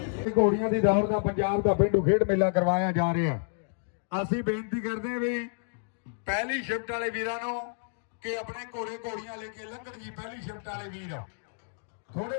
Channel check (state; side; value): silent; right; digital silence